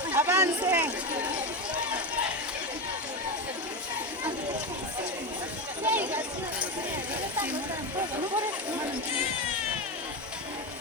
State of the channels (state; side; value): normal; both; correlation 0.15